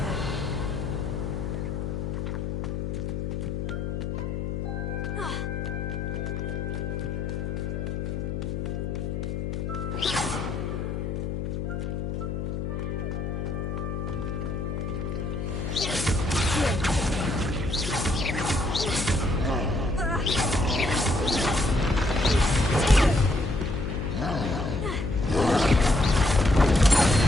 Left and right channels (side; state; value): left; noise; hum, 3 dB below the sound